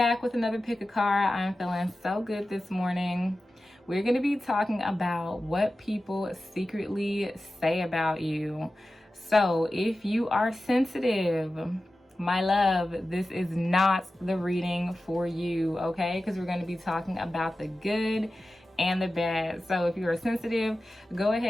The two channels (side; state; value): both; normal; correlation 0.94